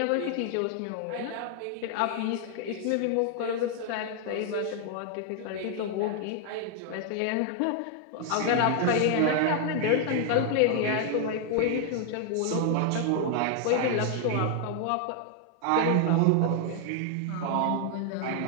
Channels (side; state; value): both; different; correlation 0.00